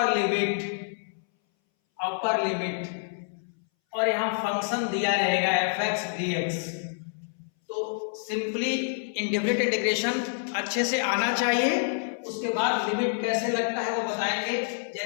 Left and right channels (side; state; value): right; silent; 60 dB below the other